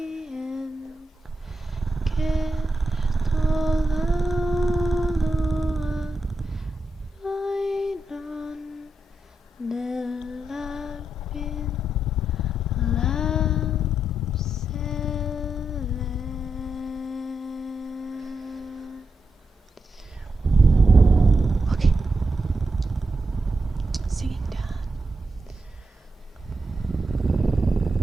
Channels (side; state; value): both; normal; correlation 0.85